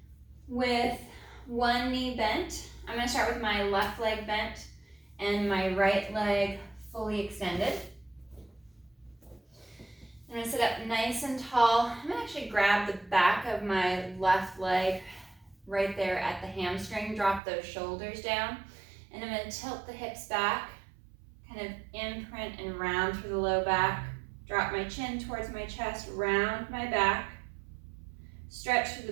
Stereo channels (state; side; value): drops out; left; at 17.4 s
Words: with one knee bent. I'm going to start with my left leg bent and my right leg fully extended. I'm going to sit up nice and tall. I'm going to actually grab the back of my left leg right there at the hamstring, drop those shoulders down, and I'm going to tilt the hips back, kind of imprint and round through the low back, drop my chin towards my chest, round my back, stretch through